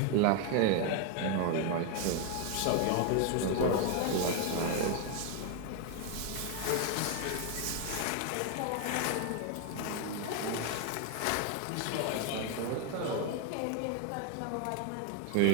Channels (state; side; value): different; both; correlation 0.00